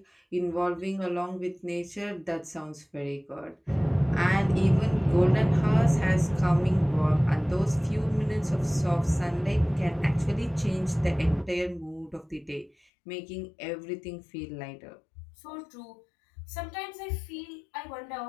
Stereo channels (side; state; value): right; drops out; at 12.7 s